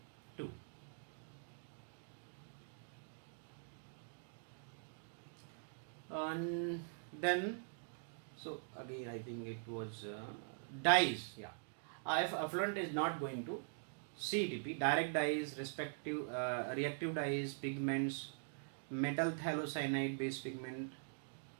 2. And then, so again I think it was dyes. Yeah, if effluent is not going to CETP, direct dyes, reactive dyes, pigments, metal phthalocyanide based pigment,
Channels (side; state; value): left; silent; digital silence